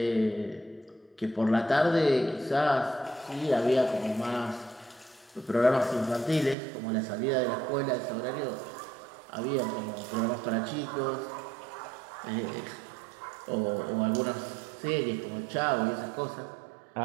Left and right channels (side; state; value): left; drops out; at 6.6 s